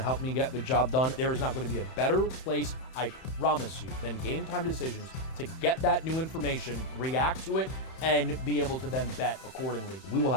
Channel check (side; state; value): right; late; 31 ms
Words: help me get the job done. There is not going to be a better place, I promise you, than Game Time Decisions to get that new information, react to it, and be able to then bet accordingly. We will